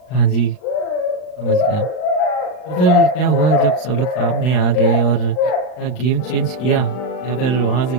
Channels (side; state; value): right; late; 39 ms